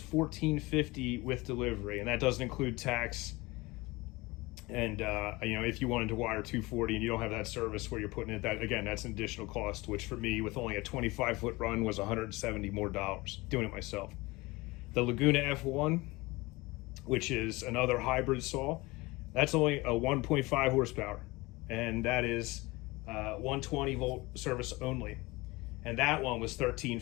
with delivery, and that doesn't include tax. And you know, if you wanted to wire 240 and you don't have that service where you're putting it, that again, that's an additional cost, which for me, with only a 25-foot run, was $170 more doing it myself. The Laguna F1, which is another hybrid saw, that's only a 1.5 horsepower, and that is 120 volt service only. And that one was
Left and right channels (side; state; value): right; quieter; 22.4 dB